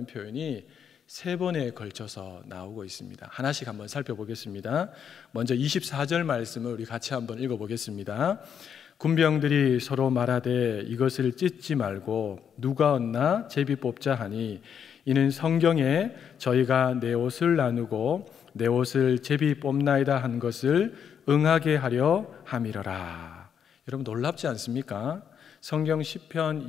표현이 3번에 걸쳐서 나오고 있습니다. 하나씩 한번 살펴보겠습니다. 먼저 24절 말씀을 우리 같이 한번 읽어보겠습니다. 군병들이 서로 말하되 이것을 찢지 말고 누가 얻나 제비 뽑자 하니 이는 성경에 저희가 내 옷을 나누고 내 옷을 제비 뽑나이다 한 것을 응하게 하려 함이러라. 여러분, 놀랍지 않습니까? 성경 시편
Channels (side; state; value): right; quieter; 7.9 dB